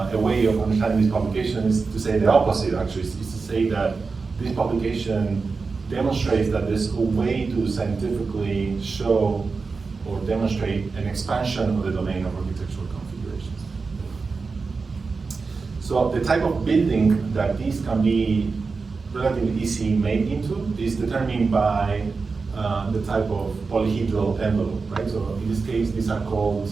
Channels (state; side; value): quieter; left; 4.5 dB